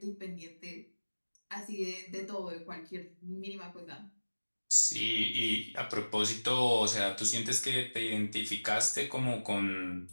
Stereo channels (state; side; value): inverted; both; correlation -1.00